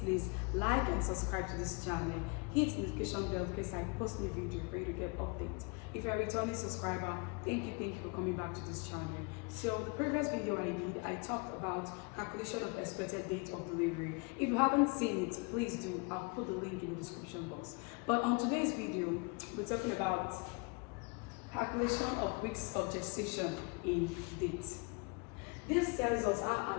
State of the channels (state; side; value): quieter; right; 31.6 dB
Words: like and subscribe to this channel. Hit the notification bell in case I post new video for you to get updates. If you're a returning subscriber, thank you for coming back to this channel. So the previous video I talked about calculation of expected date of delivery. If you haven't seen it, please do. I'll put the link in the description box. But on today's video, we're talking about calculation of weeks of gestation in dates. This tells us how